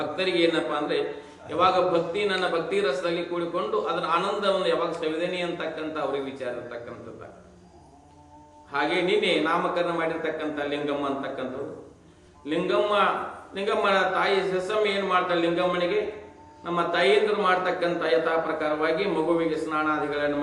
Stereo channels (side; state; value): both; identical; correlation 1.00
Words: ಏನಪ್ಪಾ ಅಂದ್ರೆ ಯಾವಾಗ ನನ್ನ ಭಕ್ತಿ ರಸದಲ್ಲಿ ಕೂಡಿಕೊಂಡು ಅದರ ಆನಂದವನ್ನು ಯಾವಾಗ ಸವಿದೇನಿ ಅಂತಕ್ಕಂಥ ಅವ್ರಿಗೆ ವಿಚಾರ ಇರ್ತಕ್ಕಂಥದ್ದು. ಹಾಗೆ ನಿನ್ನೆ ನಾಮಕರಣ ಮಾಡಿರ್ತಕ್ಕಂಥ ಲಿಂಗಮ್ಮ ಅಂತಕ್ಕಂಥದ್ದು. ಲಿಂಗಮ್ಮನ ತಾಯಿ ಸಸಮ್ಮ ಏನ್ ಮಾಡ್ತಾಳೆ, ಲಿಂಗಮ್ಮನಿಗೆ ನಮ್ಮ ತಾಯಿಯಂದರು ಮಾಡ್ತಕ್ಕಂಥ ಯಥಾ ಪ್ರಕಾರವಾಗಿ ಮಗುವಿಗೆ ಸ್ನಾನಾದಿಗಳನ್ನು